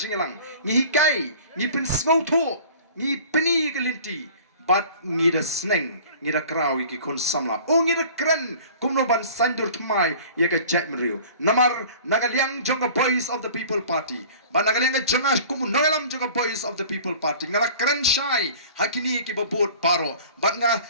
ngi hikai ngi pin snowtho ngi pini gelinti bat ngi da sneng ngi da krawi ki kon samla o ngi da kren kumno ban sandur thmai ye ka jat mriu namar nagaliang jonga Voice of the People Party ban nagaliang jonga kum noelam jonga Voice of the People Party ngala kren shai hakini ki babot paro bat nga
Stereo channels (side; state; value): both; inverted; correlation -0.45